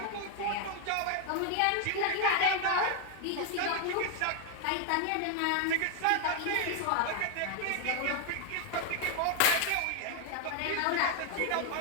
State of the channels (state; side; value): different; both; correlation 0.00